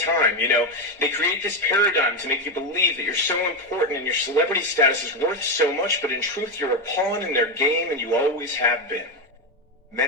They create this paradigm to make you believe that you're so important and your celebrity status is worth so much, but in truth you're a pawn in their game and you always have been.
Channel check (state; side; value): normal; both; correlation 0.10